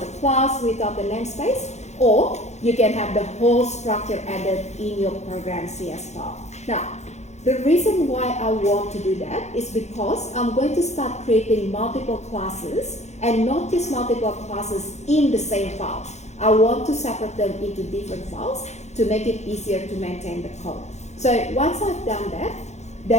class, without the namespace, or you can have the whole structure added in your program CS file. Now, the reason why I want to do that is because I'm going to start creating multiple classes, and not just multiple classes in the same file. I want to separate them into different files to make it easier to maintain the code. So once I've done that,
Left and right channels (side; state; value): right; late; 0.33 ms